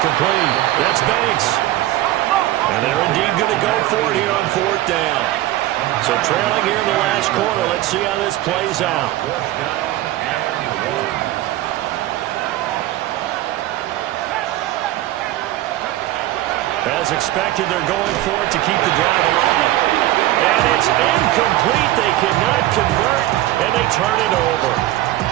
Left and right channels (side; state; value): left; quieter; 15.3 dB